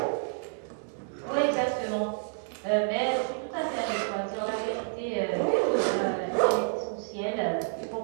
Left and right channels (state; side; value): silent; left; digital silence